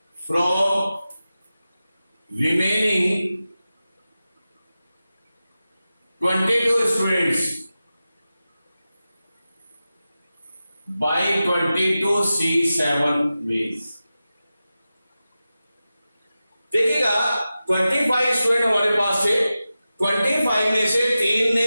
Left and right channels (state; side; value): inverted; both; correlation -0.94